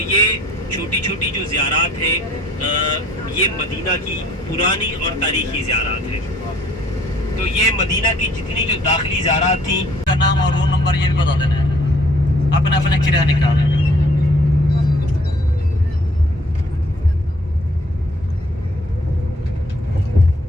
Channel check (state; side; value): normal; both; correlation 0.60